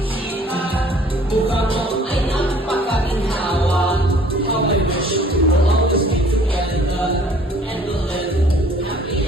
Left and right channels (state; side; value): normal; both; correlation 0.55